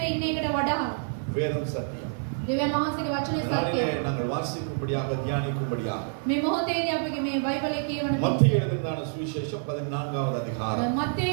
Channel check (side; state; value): left; silent; 60 dB below the other